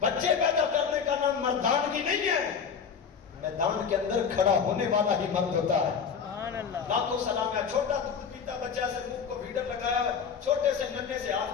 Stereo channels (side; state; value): right; quieter; 6.6 dB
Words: پیدا کرنے کا نام مردانگی نہیں ہے, میدان کے اندر کھڑا ہونے والا ہی مرد ہوتا ہے. لاکھوں سلام ہے. چھوٹا دودھ پیتا بچہ سے منہ کو بھیڑر لگایا ہے, چھوٹے سے ننھے سے